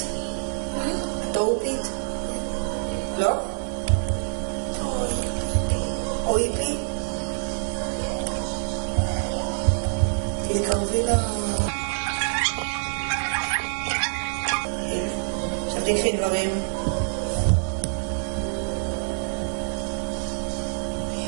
מה? את אורפית? לא? אויפי? תתקרבי ל... עכשיו תקחי דברים.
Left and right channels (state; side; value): silent; left; 61 dB below the other